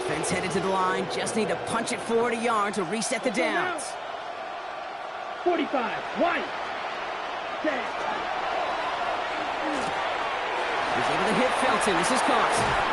headed to the line. Just need to punch it forward a yard to reset the downs. 45. White. Set. He's able to hit Felton. This is caught.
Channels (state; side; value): identical; both; correlation 1.00